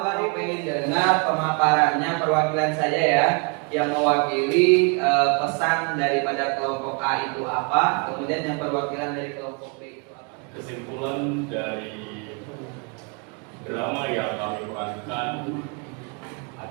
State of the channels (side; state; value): left; quieter; 33.6 dB